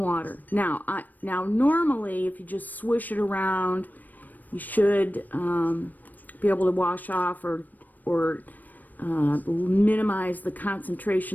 Now normally if you just swish it around, you should be able to wash off or minimize the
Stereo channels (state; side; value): late; right; 0.085 ms